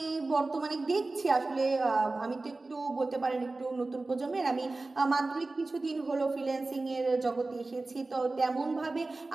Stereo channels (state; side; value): quieter; left; 3.3 dB